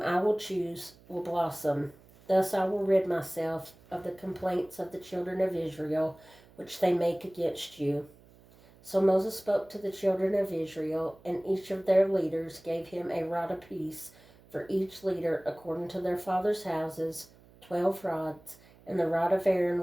I will choose will blossom. Thus I will rid myself of the complaints of the children of Israel, which they make against you." So Moses spoke to the children of Israel, and each of their leaders gave him a rod apiece, for each leader according to their father's houses, 12 rods, and the rod of Aaron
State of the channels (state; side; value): noise; right; hum, 26 dB below the sound